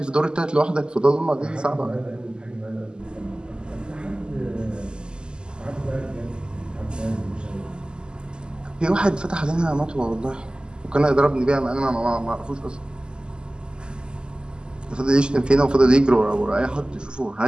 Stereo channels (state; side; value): late; left; 0.047 ms